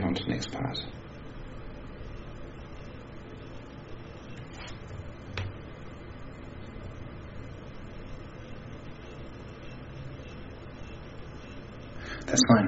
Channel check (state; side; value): identical; both; correlation 1.00